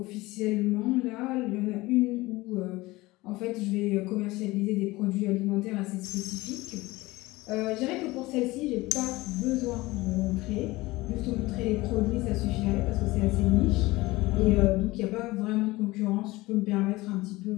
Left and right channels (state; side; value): quieter; right; 20.2 dB